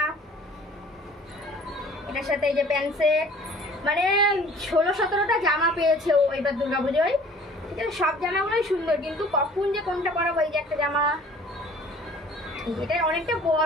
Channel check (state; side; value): normal; both; correlation 0.50